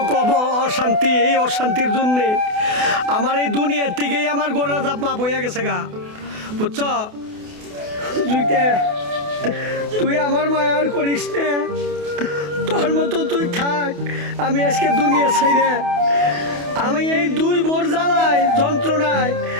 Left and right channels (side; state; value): left; late; 28 ms